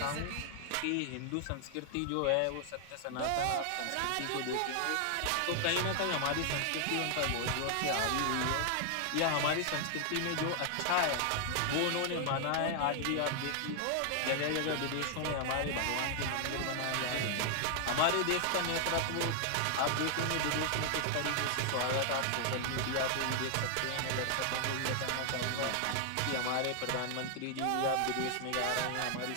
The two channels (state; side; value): different; both; correlation 0.00